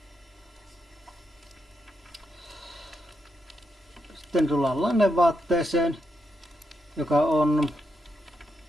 Sitten tullaan lannevaatteeseen, joka on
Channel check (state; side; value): normal; both; correlation 0.82